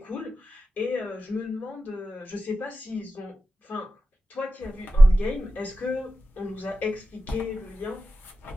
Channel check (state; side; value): normal; both; correlation 0.93